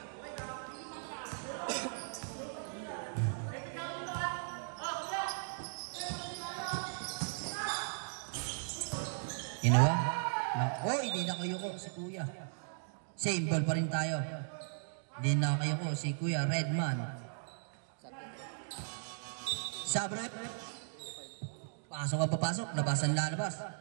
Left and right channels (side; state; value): left; silent; digital silence